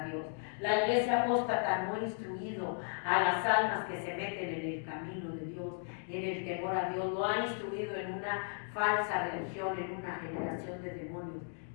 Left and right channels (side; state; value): right; silent; 54 dB below the other